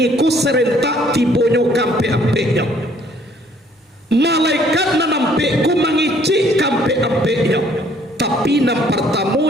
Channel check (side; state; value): both; normal; correlation 0.61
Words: ku serentak tibonyo kampe-ampeknya. Malaikat nan ampekku mengecek kampe-ampeknya, tapi nang pertama